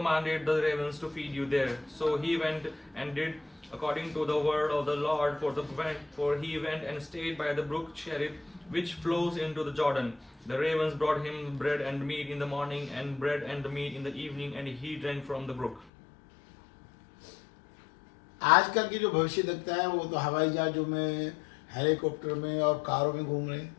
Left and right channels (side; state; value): right; drops out; at 15.9 s